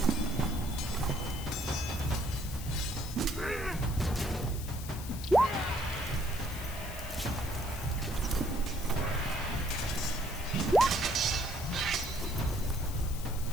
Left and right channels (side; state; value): left; noise; hiss, 12 dB below the sound